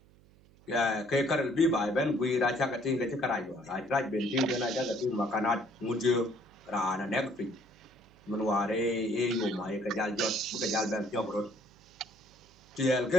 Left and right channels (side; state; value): right; noise; hum, 27 dB below the sound